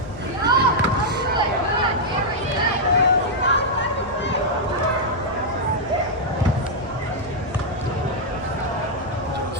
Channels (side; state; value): both; normal; correlation -0.04